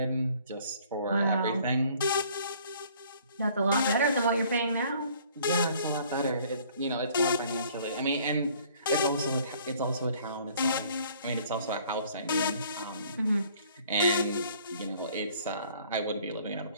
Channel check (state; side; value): inverted; both; correlation -0.57